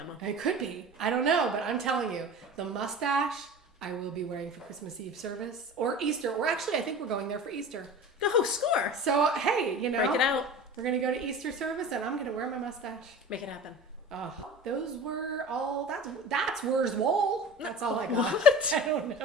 It could be. I don't know, but I'm telling you, the mustache I will be wearing for Christmas Eve service or Easter. Or actually, I think we're going there for Easter. Oh, score. So, hey, break it out. We're going to go to Easter service and I'm going to wear my mustache. Make it happen. Oh, those were all, that's where's Wool. That's all I got. What? I don't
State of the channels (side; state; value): both; normal; correlation 0.36